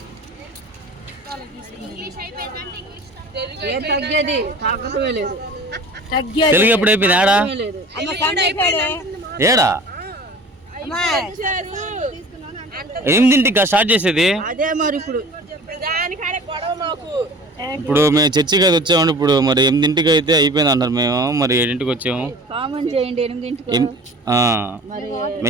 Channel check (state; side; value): normal; both; correlation 0.42